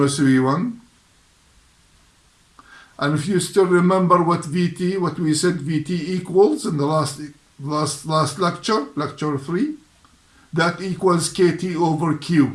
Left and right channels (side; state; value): both; identical; correlation 1.00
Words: V1. And if you still remember what we said VT equals in the last lecture, lecture 3, that equals KT over